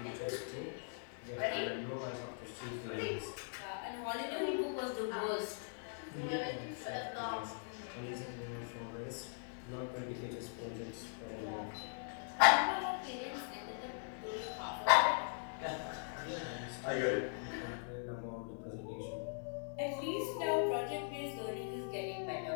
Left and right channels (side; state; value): right; silent; digital silence